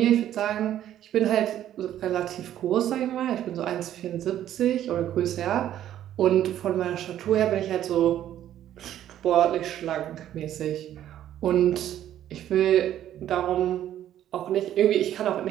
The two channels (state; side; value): quieter; left; 11.6 dB